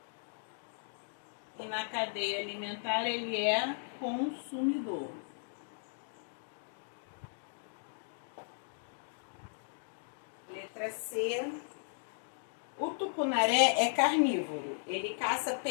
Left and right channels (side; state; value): right; silent; digital silence